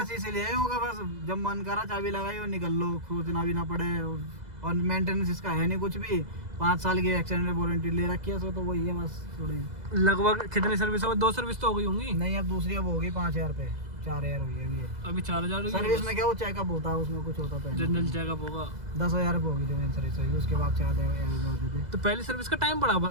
इसीलिए होगा, बस जब मन करा चाबी लगाई और निकल लो, खोजना भी ना पड़े, और मेंटेनेंस इसका है नहीं कुछ भी। 5 साल की एक्सटेंडेड वारंटी ले रखी है, तो वही है बस थोड़ी। लगभग कितनी सर्विस हो? 2 सर्विस तो हो गई होंगी? नहीं, अब दूसरी अब होगी 5,000 पे, 4,000 हुई है अभी। अभी 4,000 सर्विस में क्या वो चेकअप होता है, उसमें कुछ होता तो जनरल चेकअप होगा। 10,000 रुपये होगी जो मेन सर्विस होगी, उसके बाद 4,000 होते थे। तो पहली सर्विस का टाइम बड़ा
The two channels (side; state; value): left; late; 2.0 ms